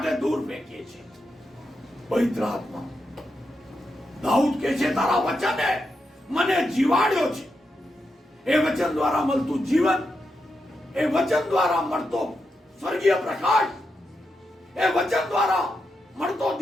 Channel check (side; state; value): both; normal; correlation 0.85